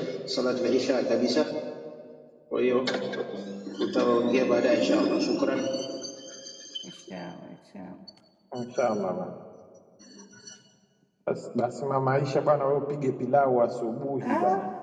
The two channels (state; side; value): identical; both; correlation 1.00